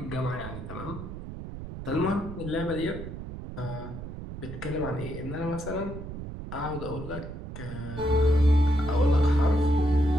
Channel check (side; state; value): right; noise; rumble, 9 dB below the sound